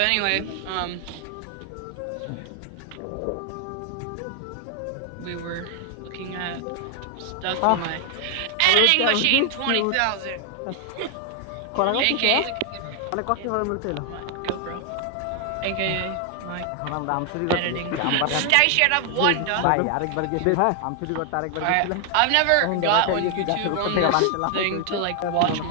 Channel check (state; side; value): different; both; correlation 0.00